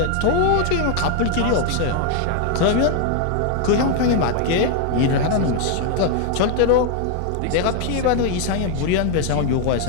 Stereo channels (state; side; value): different; both; correlation 0.00